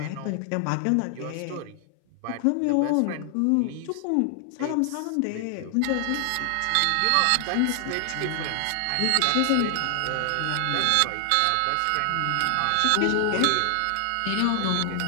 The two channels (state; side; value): different; both; correlation 0.00